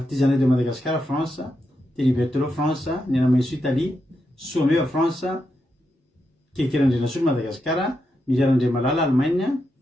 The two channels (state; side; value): normal; both; correlation 0.85